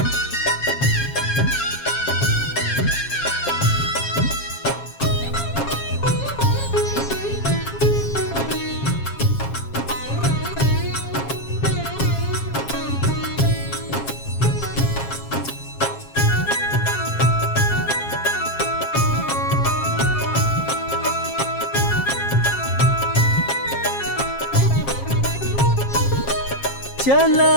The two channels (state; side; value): late; right; 7.4 ms